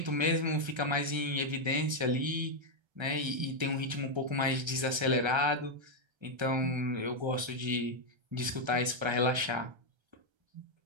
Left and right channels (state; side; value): late; left; 1.3 ms